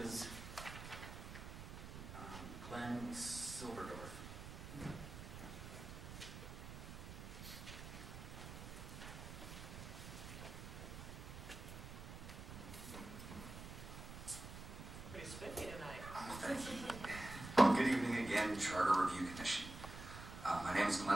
Glenn Silverdorf. Pretty spiffy tonight. Thank you. Good evening again, Charter Review Commission. My name is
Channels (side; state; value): right; noise; rumble, 10 dB below the sound